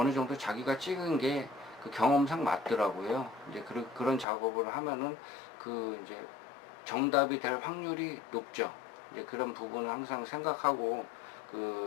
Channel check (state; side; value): drops out; right; at 4.2 s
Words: 정도 자기가 찍은 게 경험상 맞더라고요. 이제 그런 작업을 하면은 이제 정답이 될 확률이 높죠. 이제 그런 부분을 항상 생각하고